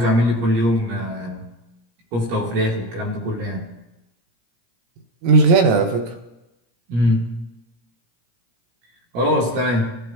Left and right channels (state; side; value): late; left; 17 ms